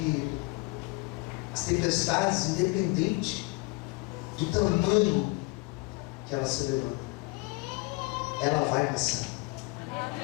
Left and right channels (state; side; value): quieter; right; 26.8 dB